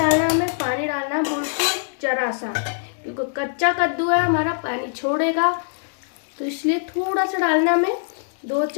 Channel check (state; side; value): silent; right; digital silence